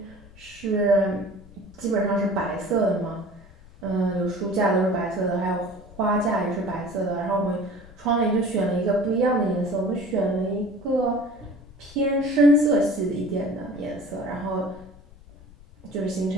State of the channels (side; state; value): left; noise; rumble, 22 dB below the sound